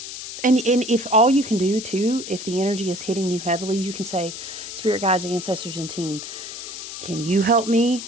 And if all you can do too, if the energy is hitting you heavily, you can say, Spirit guides, ancestors, and team, can you help me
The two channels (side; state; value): left; noise; hiss, 9 dB below the sound